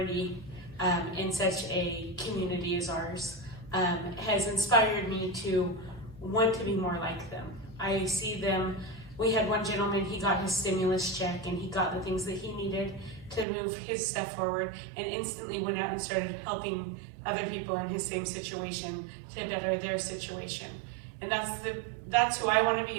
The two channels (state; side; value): drops out; left; at 13.5 s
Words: in such a community as ours, has inspired me to want to be more like them. I see them. We had one gentleman, he got his stimulus check and he got the things that he needed to move his stuff forward, and instantly went out and started helping other people in his same situation to better their situation. And that's who I want to